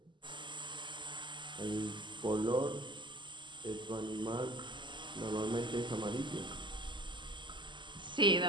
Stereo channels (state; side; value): late; left; 0.23 ms